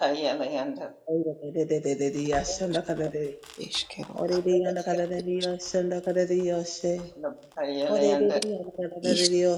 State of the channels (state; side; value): identical; both; correlation 1.00